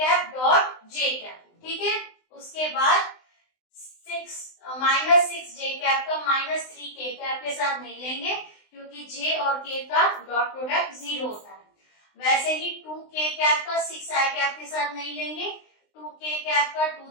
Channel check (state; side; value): late; right; 20 ms